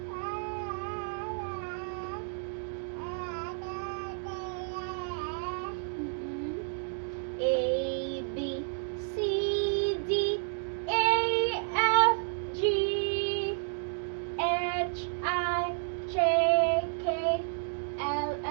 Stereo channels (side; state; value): left; silent; digital silence